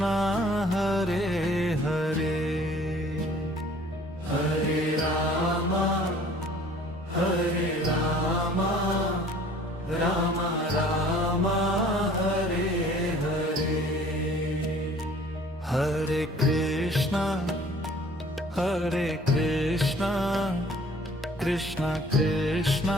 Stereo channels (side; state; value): both; normal; correlation 0.52